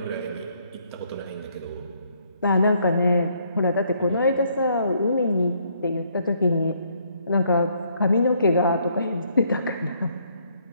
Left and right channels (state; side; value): inverted; both; correlation -0.69